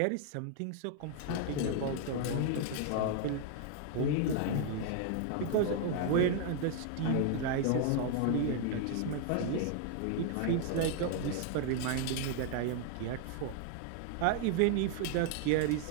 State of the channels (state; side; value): different; both; correlation 0.00